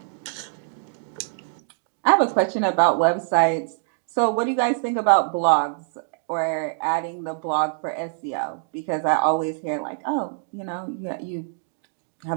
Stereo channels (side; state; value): left; silent; digital silence